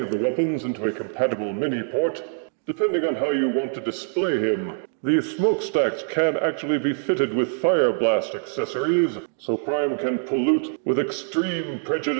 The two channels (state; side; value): silent; left; 63 dB below the other